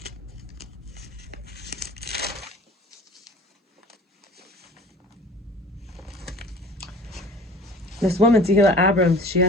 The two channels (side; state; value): both; normal; correlation 0.45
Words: this woman, Tehilla Abrams. She